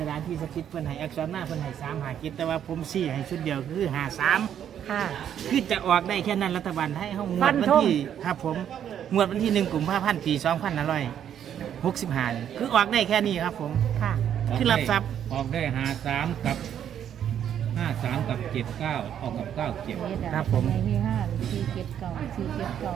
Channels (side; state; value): left; quieter; 9.5 dB